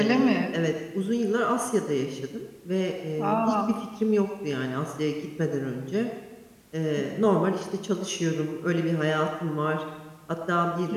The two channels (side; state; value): both; identical; correlation 1.00